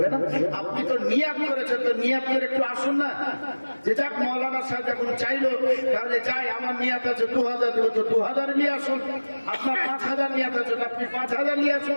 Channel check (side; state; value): both; inverted; correlation -1.00